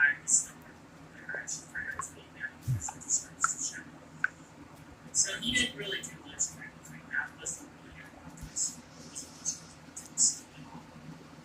actually forgot his name now because it just starts to show. So he didn't really do much technically. That wasn't really good about this.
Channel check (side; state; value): both; identical; correlation 1.00